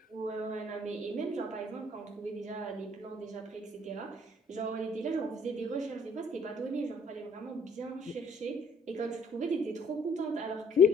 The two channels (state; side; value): normal; both; correlation 0.61